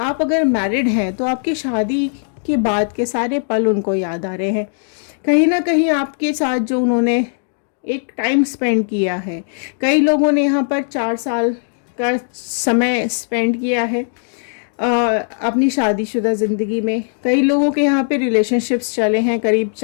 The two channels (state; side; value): silent; right; digital silence